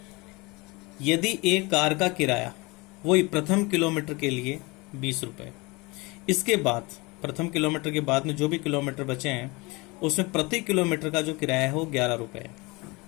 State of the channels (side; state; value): right; quieter; 25.3 dB